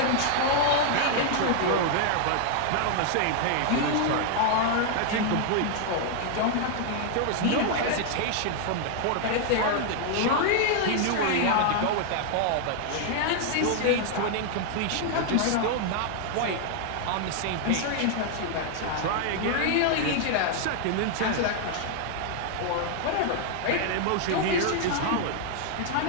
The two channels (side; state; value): both; different; correlation 0.00